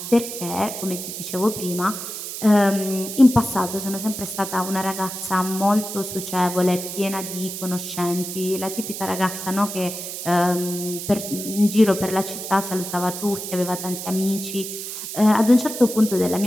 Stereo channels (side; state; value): right; noise; hiss, 7 dB below the sound